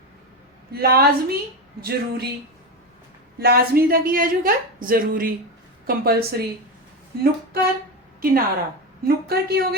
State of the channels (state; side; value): normal; both; correlation 0.16